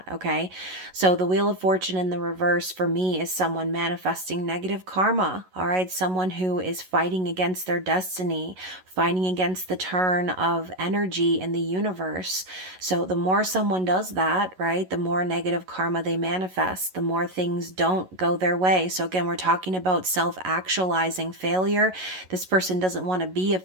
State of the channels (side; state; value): left; late; 11 ms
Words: okay? So the Wheel of Fortune in the reverse for me is someone manifesting negative karma, all right? Someone who is fighting against their destiny, fighting against the turn of energy in the universe. So the more someone does that, right, the more negative karma they manifest, the more things don't go their way. So again, we're talking about self-actualizing failure. This person doesn't want to be a